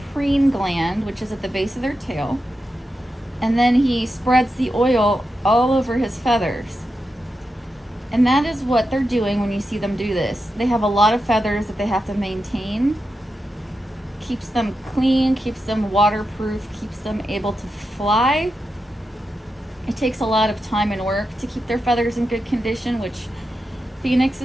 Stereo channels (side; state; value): both; normal; correlation 0.88